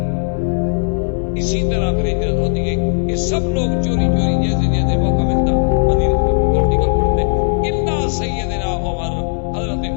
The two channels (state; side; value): silent; right; 68 dB below the other